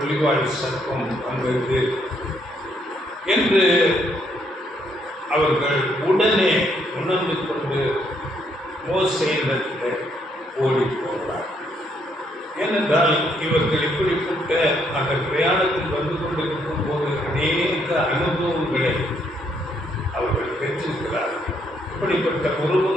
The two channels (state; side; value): normal; both; correlation 0.72